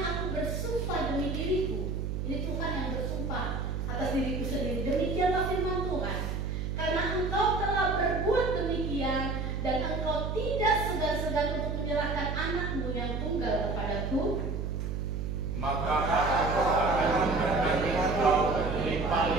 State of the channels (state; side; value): noise; right; hum, 2 dB below the sound